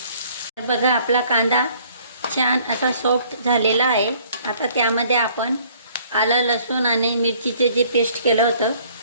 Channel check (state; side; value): inverted; both; correlation -0.58